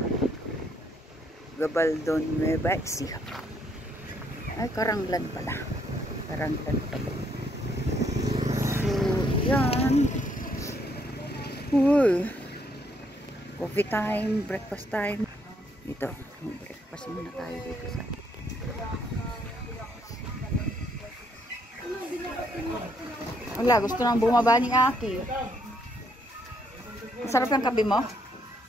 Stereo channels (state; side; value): normal; both; correlation 0.71